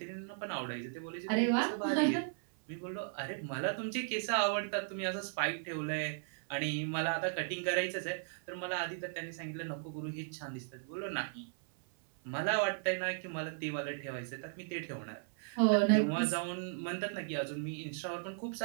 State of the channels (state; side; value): silent; left; 54 dB below the other